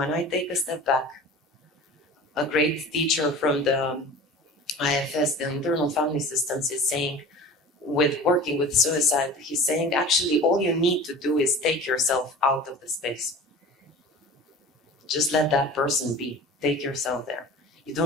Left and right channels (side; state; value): both; normal; correlation 0.38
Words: I take a step back. A great teacher from the IFS, the Internal Family Systems, is saying, with working with suicide, he's saying, actually, all you need to do is take yourself out of the space. Just let that person be. Take yourself there. You